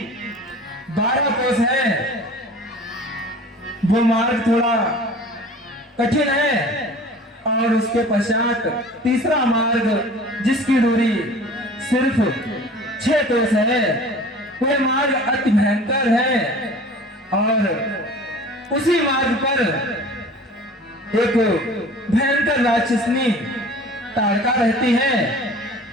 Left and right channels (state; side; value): normal; both; correlation 0.44